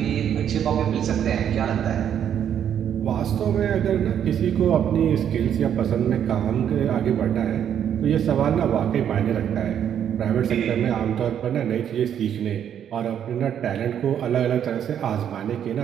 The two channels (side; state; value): left; quieter; 9.2 dB